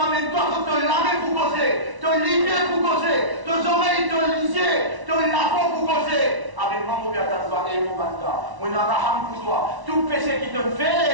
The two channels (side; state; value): left; late; 1.0 ms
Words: toi, te laver pour causer, te livrer pour causer, tes oreilles te liser, te laver pour causer. Avec moi, mon bien toi et mon banda, mon araham pour toi, tout péché qui te